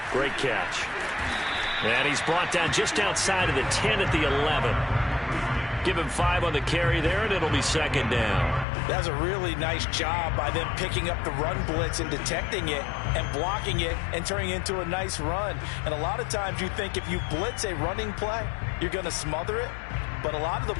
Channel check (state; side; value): drops out; right; at 8.7 s